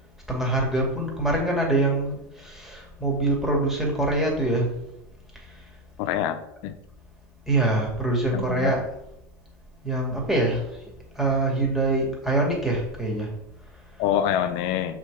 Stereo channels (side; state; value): both; normal; correlation 0.10